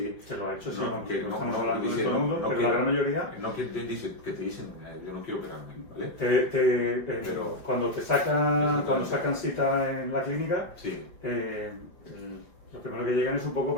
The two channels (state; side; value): late; right; 5.2 ms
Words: que lo ha hecho, que no estamos hablando de todo el mundo, pero la gran mayoría que te dicen yo no quiero operarme, ¿vale? Pero cuando sacan cita en la clínica, sí. Lo primero que llegan es un poco